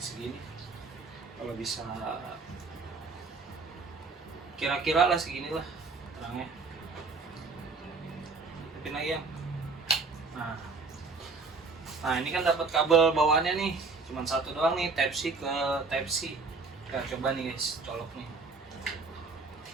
Kalau bisa kira-kira lah segini lah terangnya. Hidupin lagi ya. Nah ini kan dapat kabel bawaannya nih, cuman satu doang nih, Type C ke Type C. Kita coba nih guys, colok nih.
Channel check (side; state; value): left; quieter; 4.2 dB